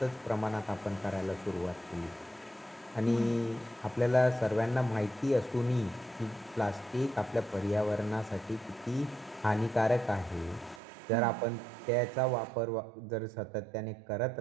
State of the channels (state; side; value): drops out; left; at 10.8 s